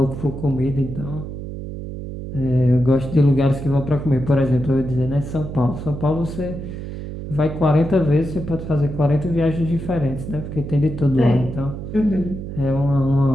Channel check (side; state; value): right; noise; hum, 8 dB below the sound